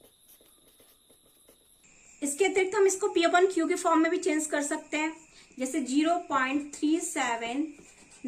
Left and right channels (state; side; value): identical; both; correlation 1.00